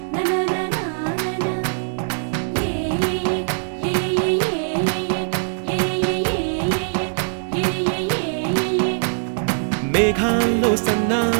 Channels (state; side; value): silent; left; digital silence